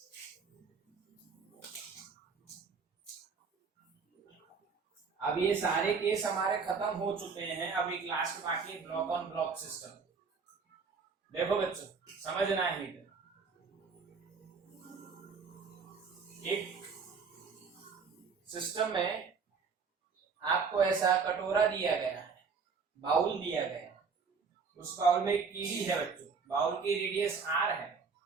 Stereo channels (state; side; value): quieter; left; 5.3 dB